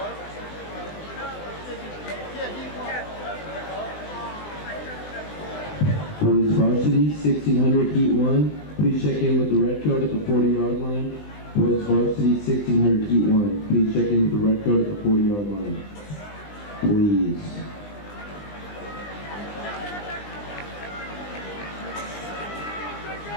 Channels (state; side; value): late; right; 20 ms